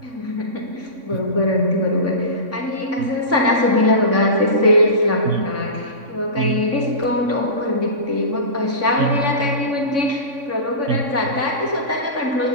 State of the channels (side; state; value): left; late; 3.6 ms